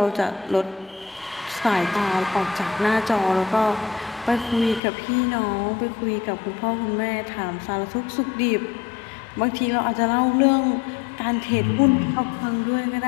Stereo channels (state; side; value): drops out; right; at 4.8 s